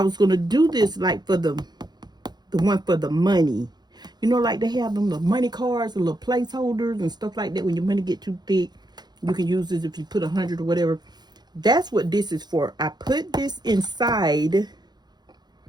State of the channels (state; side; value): late; left; 0.20 ms